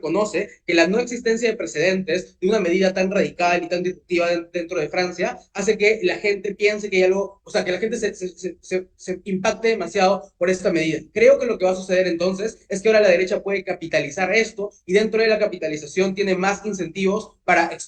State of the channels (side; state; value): both; identical; correlation 1.00